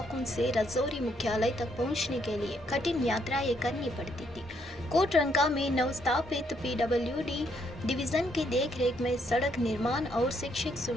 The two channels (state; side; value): normal; both; correlation 0.73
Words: से राजौरी मुख्यालय तक पहुंचने के लिए कठिन यात्राएं करनी पड़ती थी। कोटरंका में नवस्थापित पीडब्ल्यूडी डिवीजन की देखरेख में सड़क निर्माण और शिक्षक